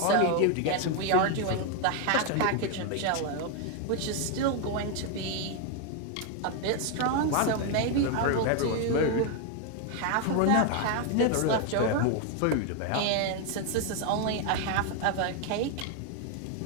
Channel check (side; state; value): both; different; correlation 0.01